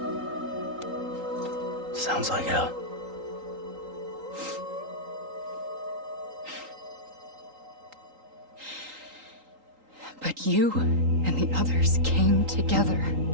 Sounds like hell. But you and the others came together,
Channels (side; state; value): left; late; 3.8 ms